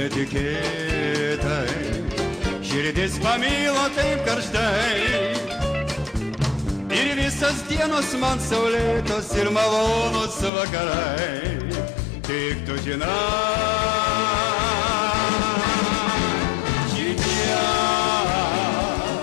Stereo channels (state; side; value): drops out; right; at 10.5 s